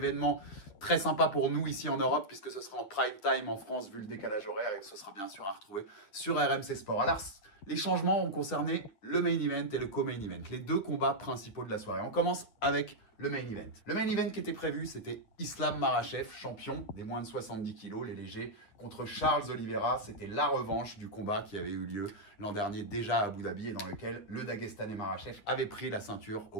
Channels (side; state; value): right; late; 9.3 ms